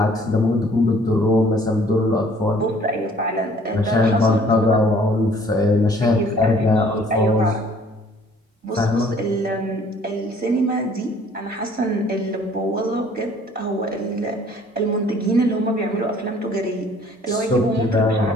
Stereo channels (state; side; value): normal; both; correlation 0.56